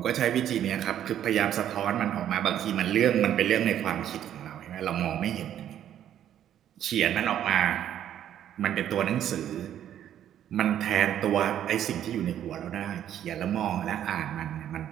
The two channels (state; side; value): quieter; left; 10.7 dB